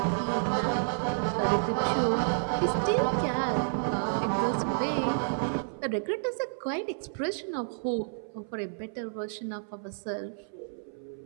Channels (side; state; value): left; silent; 57 dB below the other